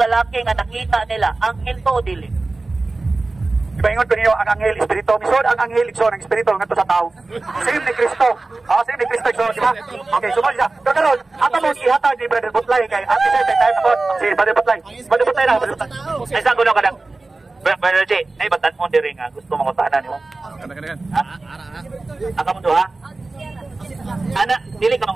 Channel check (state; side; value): quieter; left; 3.4 dB